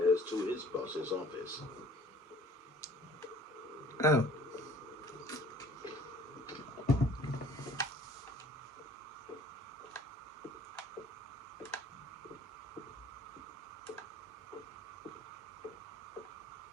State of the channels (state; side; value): normal; both; correlation 0.51